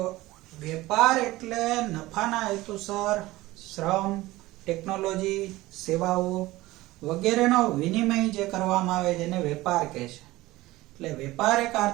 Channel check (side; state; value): left; quieter; 18.4 dB